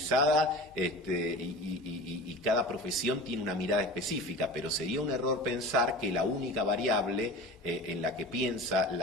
y cada profesión tiene una mirada específica, pero sería un error pensar que la única variable en la que piensa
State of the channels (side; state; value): both; normal; correlation 0.35